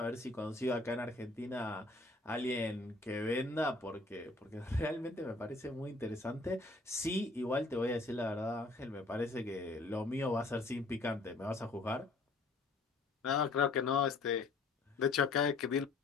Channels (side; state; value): right; quieter; 3.4 dB